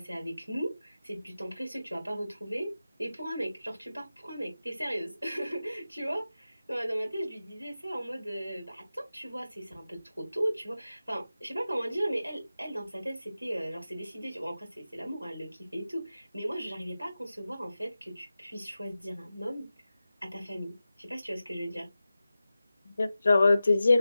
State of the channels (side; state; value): both; inverted; correlation -0.94